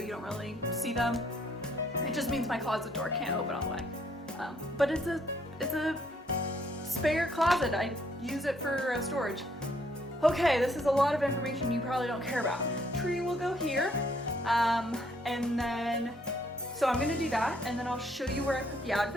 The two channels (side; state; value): both; normal; correlation 0.67